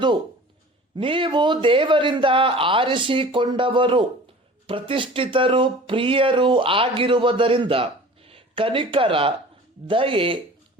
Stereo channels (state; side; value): normal; both; correlation 0.43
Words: ನೀವು ದೇವರಿಂದ ಆರಿಸಿಕೊಂಡವರು, ಪ್ರತಿಷ್ಠಿತರು, ಪ್ರಿಯರು ಆಗಿರುವುದರಿಂದ ಕನಿಕರ, ದಯೆ,